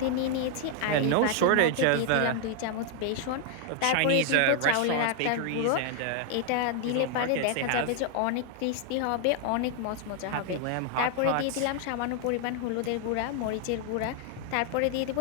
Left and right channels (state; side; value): different; both; correlation 0.00